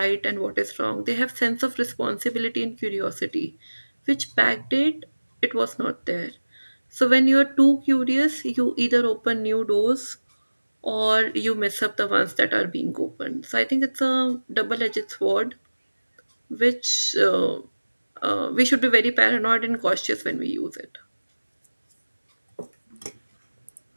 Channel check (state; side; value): inverted; both; correlation -1.00